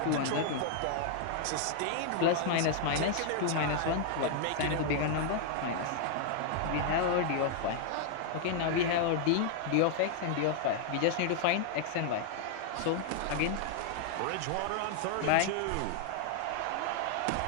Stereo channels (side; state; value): both; different; correlation 0.00